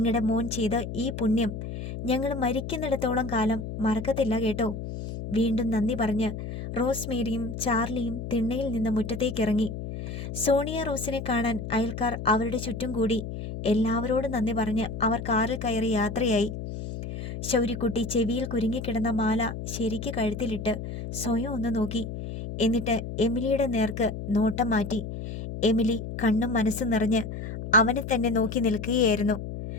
മോൻ ചെയ്ത ഈ പുണ്യം ഞങ്ങൾ മരിക്കുന്നിടത്തോളം കാലം മറക്കത്തില്ല കേട്ടോ. വീണ്ടും നന്ദി പറഞ്ഞ് റോസ്മേരിയും ചാർലിയും തിണ്ണയിൽ നിന്ന് മുറ്റത്തേക്കിറങ്ങി. സോണിയ റോസിനെ കാണാൻ അയൽക്കാർ അവരുടെ ചുറ്റും കൂടി. എല്ലാവരോടും നന്ദി പറഞ്ഞ് അവർ കാറിൽ കയറി യാത്രയായി. ശൗര്യക്കുട്ടി ചെവിയിൽ കുരുങ്ങിക്കിടന്ന മാല ശരിക്ക് കഴുത്തിലിട്ട് സ്വയം ഒന്ന് നോക്കി. എന്നിട്ട് എമിലിയുടെ നേർക്ക് നോട്ടം മാറ്റി. എമിലി കണ്ണും മനസ്സും നിറഞ്ഞ് അവനെ തന്നെ നോക്കി നിൽക്കുകയായിരുന്നു.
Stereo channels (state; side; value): noise; left; hum, 7 dB below the sound